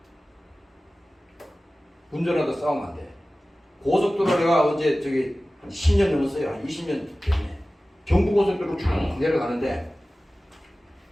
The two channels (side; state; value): both; normal; correlation 0.96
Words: 운전하다 싸우면 안 돼. 고속도로 내가 언제 저기 한 10년 넘었어요. 한 20년 됐네. 경부고속도로 쭉 내려가는데